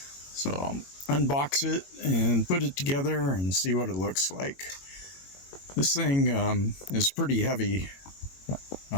I'll unbox it and put it together and see what it looks like. This thing is pretty heavy.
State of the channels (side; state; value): right; late; 22 ms